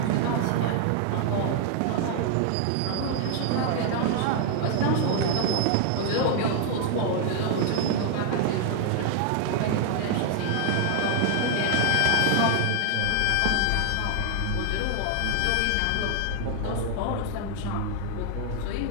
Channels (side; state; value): both; different; correlation 0.00